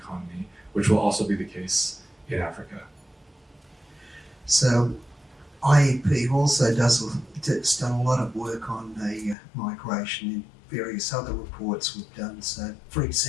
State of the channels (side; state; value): right; drops out; at 9.3 s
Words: which will also be the case in Africa. So IEP also has done a lot of work on the migration in various other reports we've done. So, for